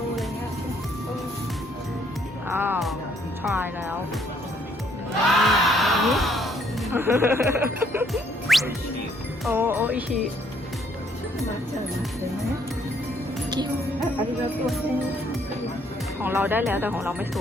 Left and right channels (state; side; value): normal; both; correlation 0.67